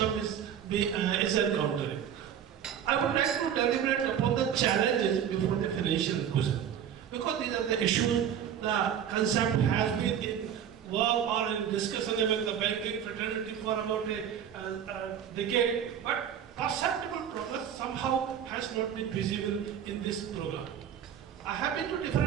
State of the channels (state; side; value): quieter; left; 9.0 dB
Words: is encountering. I would like to deliberate upon the challenges before the financial inclusion, because these are the issues. The concept has been in work or in discussion among the banking fraternity for about a decade, but perceptible progress somehow has not been visible in this program. I have been to